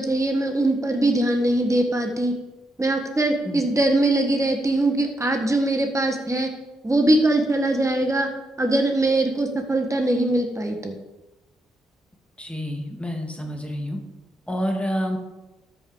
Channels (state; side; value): normal; both; correlation 0.82